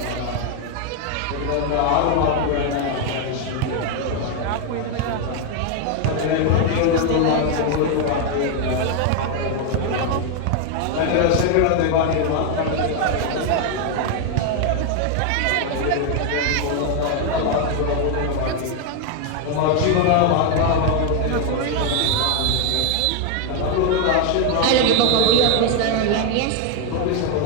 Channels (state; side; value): different; both; correlation 0.01